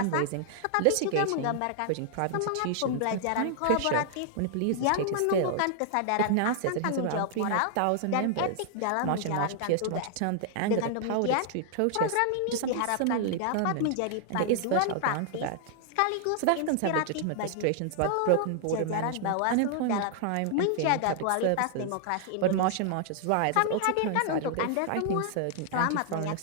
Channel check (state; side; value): different; both; correlation 0.00